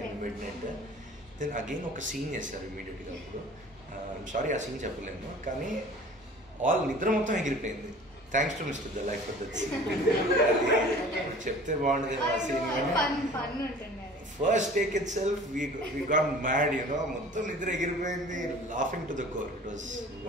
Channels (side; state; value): both; normal; correlation 0.45